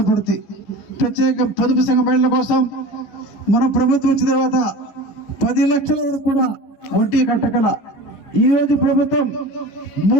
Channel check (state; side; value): late; right; 15 ms